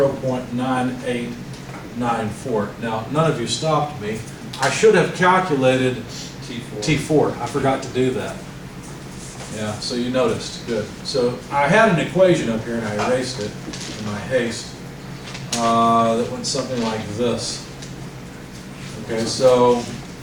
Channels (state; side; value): identical; both; correlation 1.00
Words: Now, none of you stopped me. I should have calculated T4. I forgot to do that. Yeah, so you noticed. Good. So I had an equation up here, and I erased it in my haste. That went something like this. Okay, so